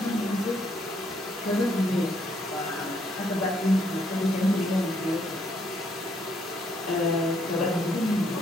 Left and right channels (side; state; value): both; normal; correlation 0.71